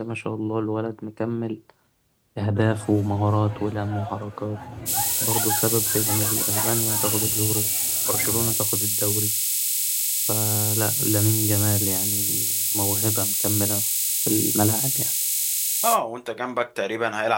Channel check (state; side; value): identical; both; correlation 1.00